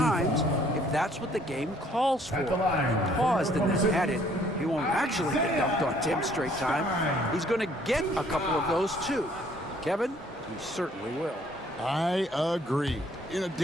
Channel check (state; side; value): normal; both; correlation 0.61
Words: if that's what the game calls for. He paused and then added, he won't actually get dunked on 10 straight times. He's going to get a couple of those, too. Kevin, he certainly will. I agree. You know,